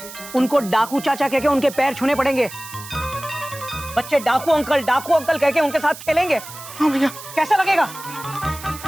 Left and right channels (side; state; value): right; noise; hiss, 14 dB below the sound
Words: उनको डाकू चाचा कह के उनके पैर छूने पड़ेंगे। बच्चे डाकू अंकल कह के उनके साथ खेलेंगे। हाँ भैया। कैसा लगेगा?